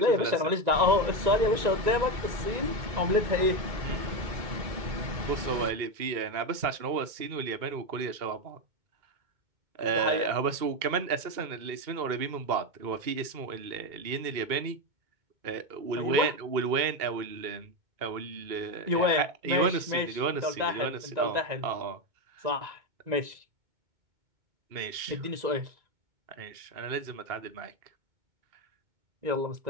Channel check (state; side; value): late; left; 2.2 ms